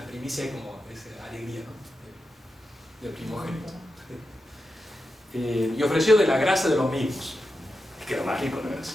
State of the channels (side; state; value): both; normal; correlation 0.89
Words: primicias hay como esa alegría, ¿no? Del primogénito. Y ofreció de la grasa de los mismos. Es que lo más rico no